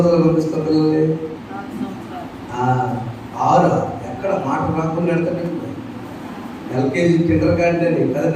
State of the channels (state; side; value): identical; both; correlation 1.00